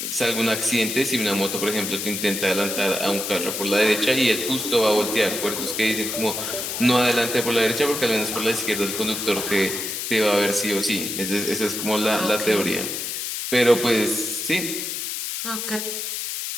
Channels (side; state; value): left; noise; hiss, 4 dB below the sound